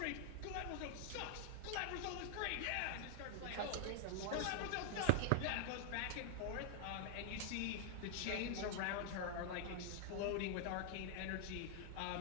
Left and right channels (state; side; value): different; both; correlation 0.00